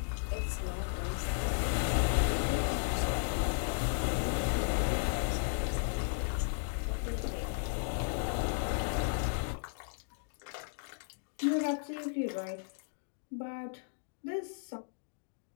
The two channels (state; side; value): silent; right; digital silence